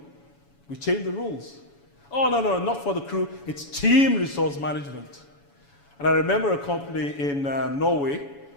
We changed the rules. Oh, no, not for the crew. It's team resource management. And I remember a company in Norway.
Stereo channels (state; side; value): late; right; 7.1 ms